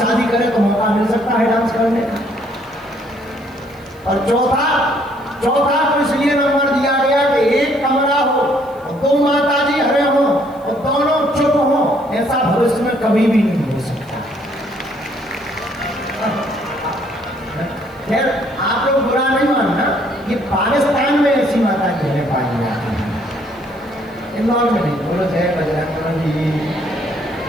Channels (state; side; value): noise; left; hiss, 30 dB below the sound